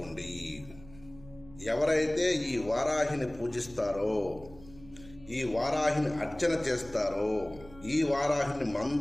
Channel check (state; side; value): noise; right; hum, 20 dB below the sound